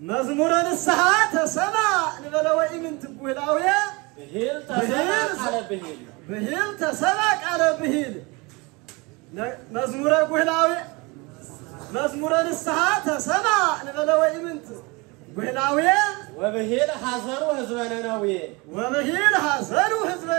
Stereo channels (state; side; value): quieter; left; 26.5 dB